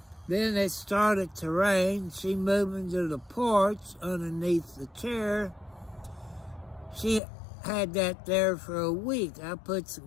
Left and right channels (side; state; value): right; drops out; at 7.2 s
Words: Then it started to rain. She moved into the porch underneath the chair. She had that there for a week. I put